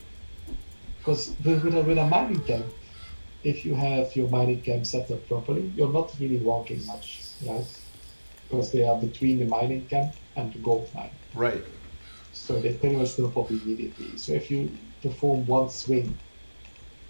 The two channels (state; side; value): inverted; both; correlation -1.00